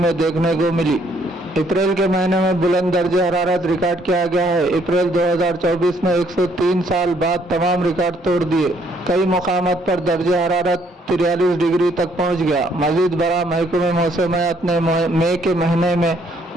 देखने को मिली। अप्रैल के महीने में बुलंद दर्जे हरारत रिकॉर्ड किया गया है। अप्रैल 2024 में 103 साल बाद तमाम रिकॉर्ड तोड़ दिए। कई मुकामात पर दर्जे हरारत 43 डिग्री तक पहुंच गया। मजीद बड़ा महकमे मौसमियात ने मई के महीने में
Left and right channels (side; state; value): both; normal; correlation 0.67